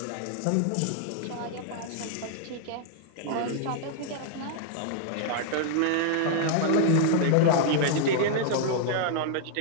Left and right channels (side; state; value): both; different; correlation -0.01